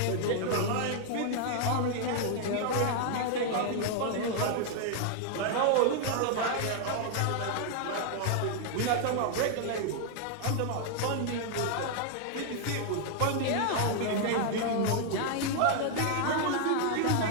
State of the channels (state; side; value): different; both; correlation 0.00